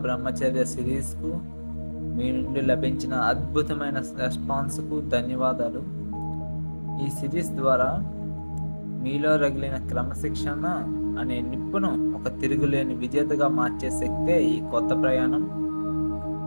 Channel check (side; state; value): both; inverted; correlation -1.00